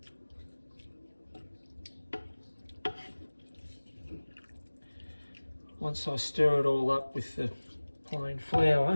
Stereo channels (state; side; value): inverted; both; correlation -1.00